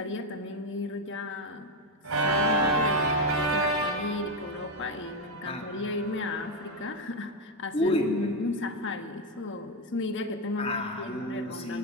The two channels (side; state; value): both; normal; correlation 0.08